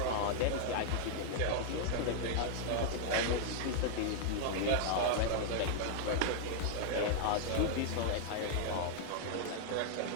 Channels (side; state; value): both; different; correlation 0.00